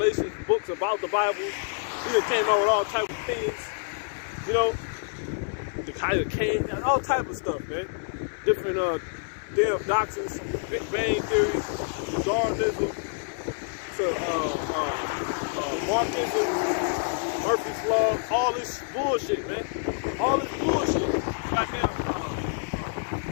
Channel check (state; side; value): silent; right; 58 dB below the other